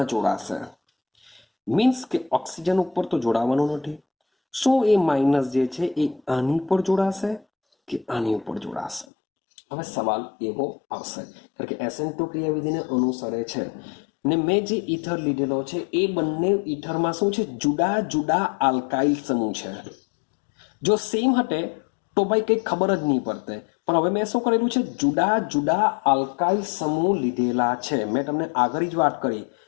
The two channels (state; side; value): drops out; right; at 9.1 s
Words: જોડાશે? મીન્સ કે ઓક્સિજન ઉપર તો જોડાવાનું નથી. શું એ માઇનસ જે છે એ આની ઉપર જોડાશે કે આની ઉપર જોડાશે? હવે સવાલ એવો આવશે કારણ કે SN2 ક્રિયાવિધિને અનુસરે છે ને મેં જે ઈથર લીધેલો છે એ બંને ઈથરમાં શું છે? જુદા જુદા આલ્કાઇલ સમૂહ છે. જો સેમ હટે તો ભાઈ કંઈ ખબર જ નહીં પડતે, પણ હવે મેં શું કરેલું છે? જુદા જુદા આલ્કાઇલ સમૂહ લીધેલા છે. મેં તમને આગળ જ વાત કરી